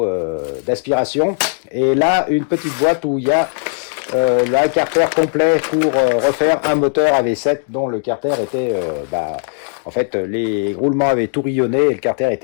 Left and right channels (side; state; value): right; silent; 68 dB below the other